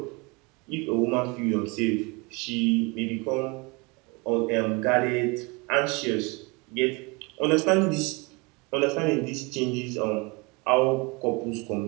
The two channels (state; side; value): quieter; left; 28.3 dB